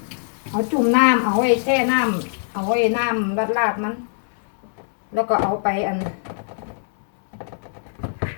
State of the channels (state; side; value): silent; right; digital silence